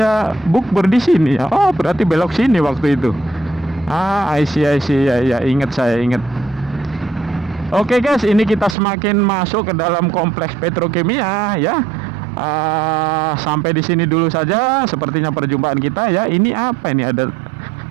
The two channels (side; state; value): left; drops out; at 8.8 s